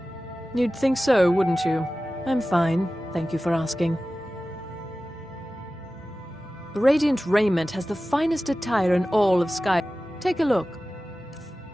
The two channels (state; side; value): normal; both; correlation 0.96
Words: You'd think so, wouldn't you? I'm fine, thank you for asking. Radiant Raiment has the finest attire in all of Sky... Take a look.